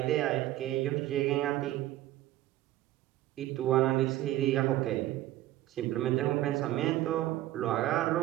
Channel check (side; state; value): left; quieter; 14.8 dB